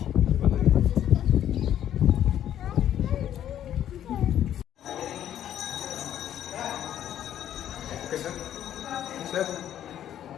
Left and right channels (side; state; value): right; quieter; 10.9 dB